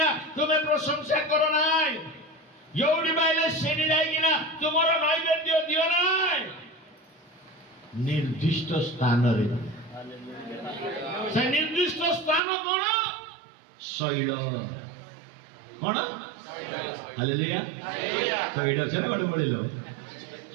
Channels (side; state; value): left; drops out; at 12.4 s